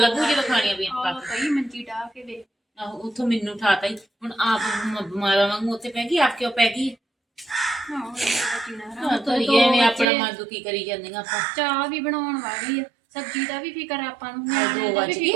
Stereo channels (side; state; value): left; drops out; at 10.1 s